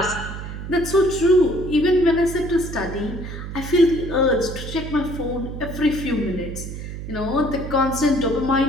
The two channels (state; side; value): noise; right; hum, 8 dB below the sound